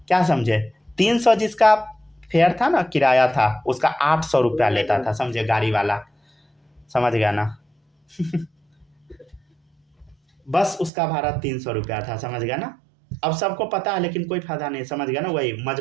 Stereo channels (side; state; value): left; drops out; at 10.9 s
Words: समझे, 300 जिसका फेयर था ना, किराया था, उसका 800 रुपया लेता था, समझे, गाड़ी वाला, समझ गया ना बस उसका भाड़ा 300 रुपया था, समझ गया ना। अब सबको पता है लेकिन कोई फायदा नहीं, समझ गया ना। वही